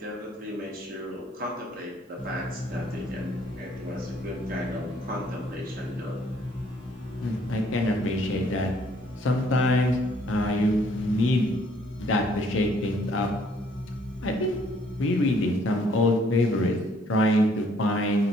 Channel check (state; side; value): normal; both; correlation 0.63